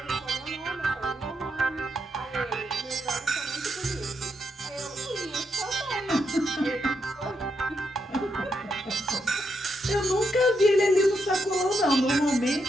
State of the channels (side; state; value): both; normal; correlation 0.81